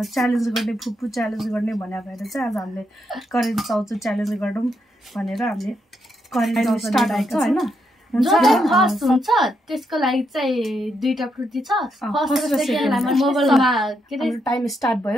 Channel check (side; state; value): both; normal; correlation 0.79